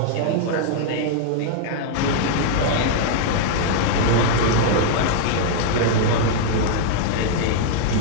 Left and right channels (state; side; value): different; both; correlation -0.01